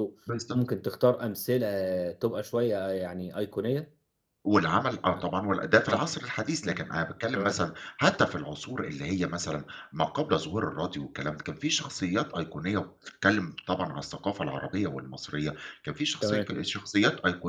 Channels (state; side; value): identical; both; correlation 1.00